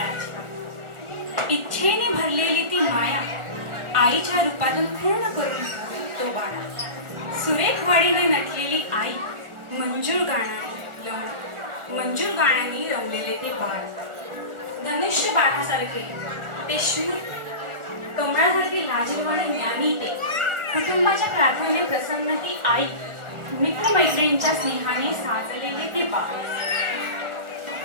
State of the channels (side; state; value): left; late; 1.4 ms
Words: इच्छेने भरलेली ती माया आईच्या रूपातून पूर्ण करून तो बाळा. सुरेख वाडीने नटलेली आई मंजूर गाण्याने रमलेले ते बाळ. धनुष्य बाळासारखे ते शूर, कमळासारखी लाजरवाणी ज्ञानी ते, कुटुंबाच्या प्रार्थनेने प्रसन्न ती आई, मित्रमैत्रिणींच्या स्नेहाने साजलेले ते बाळ.